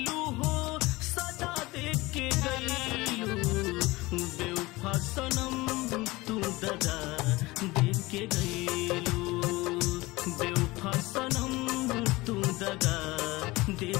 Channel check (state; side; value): quieter; right; 21.2 dB